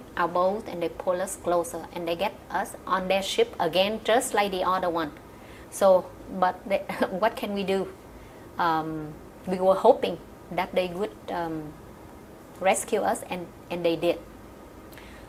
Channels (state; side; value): identical; both; correlation 1.00